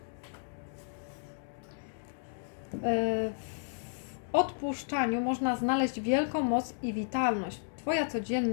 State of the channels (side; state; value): right; silent; digital silence